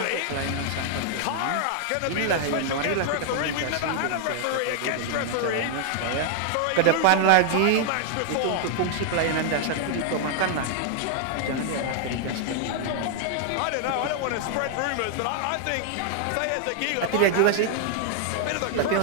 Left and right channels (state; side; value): different; both; correlation 0.00